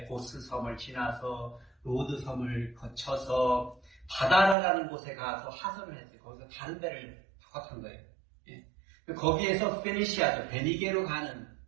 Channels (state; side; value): drops out; left; at 4.5 s